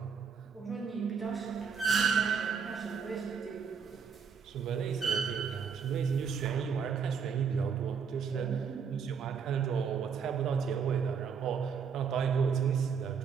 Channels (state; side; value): quieter; left; 6.4 dB